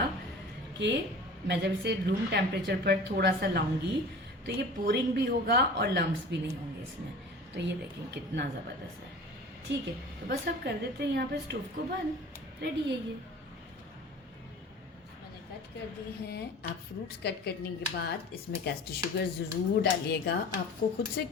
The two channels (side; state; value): both; normal; correlation 0.40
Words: कि मैं जब इसे रूम टेम्परेचर पर थोड़ा सा लाऊंगी तो ये पोरिंग भी होगा और लम्स भी नहीं होंगे इसमें। तो ये देखें कितना ज़बरदस्त है। ठीक है, तो बस अब कर देते हैं यहाँ पे स्टोव को बंद। रेडी है ये, मैंने कट कर दी हैं। आप फ्रूट्स कट करने के बाद इसमें कैस्टर शुगर ज़रूर डालिएगा आपको खुद से,